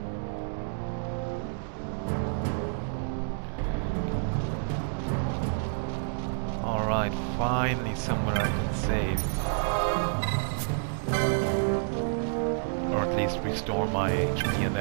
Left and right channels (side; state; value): left; silent; digital silence